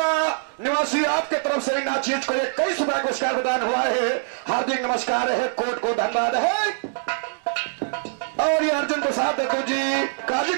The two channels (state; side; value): silent; left; digital silence